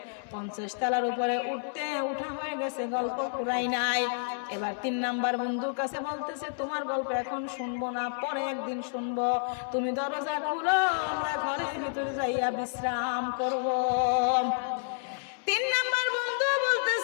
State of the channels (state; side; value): silent; right; 56 dB below the other